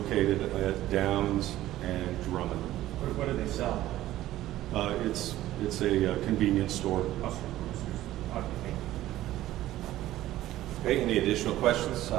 at Downs and Drummond. What do they sell? It's a convenience store. Okay, any additional questions?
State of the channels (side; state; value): left; quieter; 14.6 dB